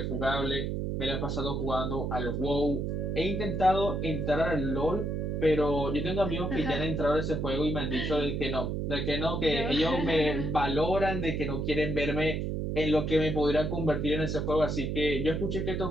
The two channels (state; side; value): noise; right; hum, 1 dB below the sound